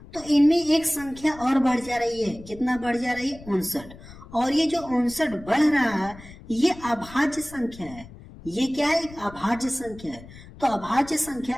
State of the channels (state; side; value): noise; left; rumble, 18 dB below the sound